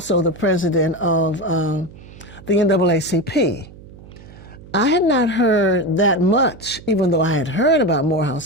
the president of the NAACP. I had not heard that much, even though I had heard about Morehouse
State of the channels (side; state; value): right; noise; hum, 19 dB below the sound